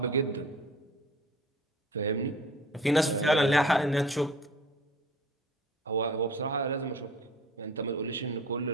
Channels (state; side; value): normal; both; correlation 0.46